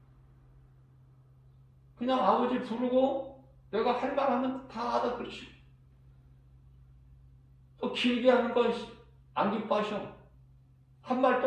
그냥 아버지 부르고 내가 할 말하면 다 알아들으시고, 또 길게 하는 거 안 기뻐하셔. 한 말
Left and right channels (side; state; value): both; identical; correlation 1.00